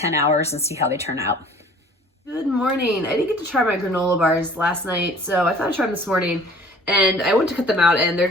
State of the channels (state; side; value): normal; both; correlation 0.50